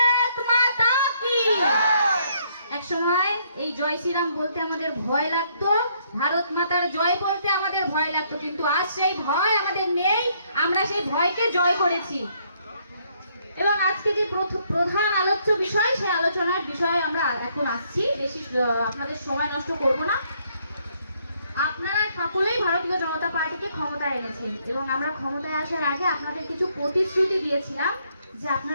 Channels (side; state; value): both; inverted; correlation -0.69